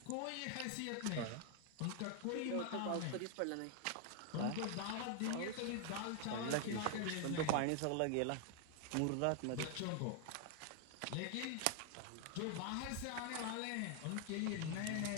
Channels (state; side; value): different; both; correlation 0.00